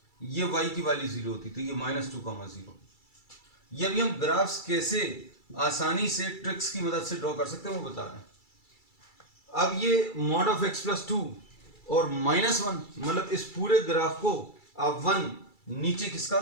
ये y की वैल्यू 0 होती, तो ये माइनस 2 कॉमा 0। ये अभी हम ग्राफ्स कैसे आसानी से ट्रिक्स की मदद से ड्रॉ कर सकते हैं वो बता रहे हैं। अब ये मॉड ऑफ x प्लस 2 और माइनस 1, मतलब इस पूरे ग्राफ को आप 1 नीचे खिसका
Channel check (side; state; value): right; late; 2.3 ms